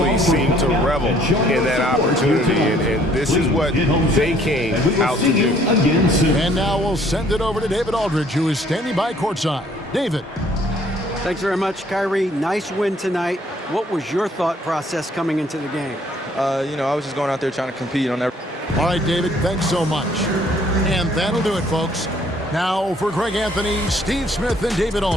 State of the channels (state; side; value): normal; both; correlation 0.61